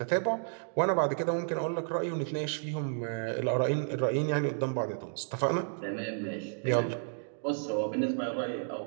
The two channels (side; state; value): left; silent; digital silence